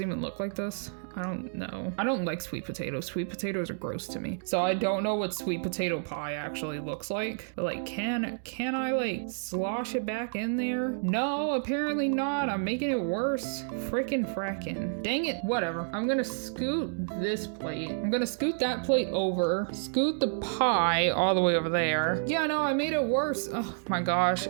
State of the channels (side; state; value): left; silent; digital silence